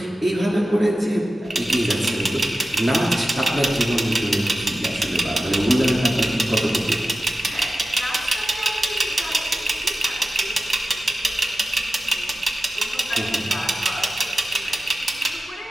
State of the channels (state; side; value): normal; both; correlation 0.94